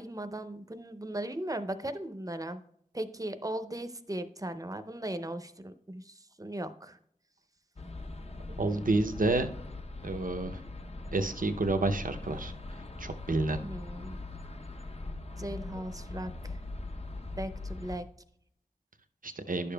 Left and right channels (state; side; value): normal; both; correlation 0.73